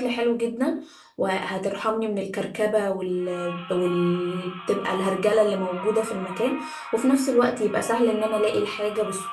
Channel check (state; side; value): identical; both; correlation 1.00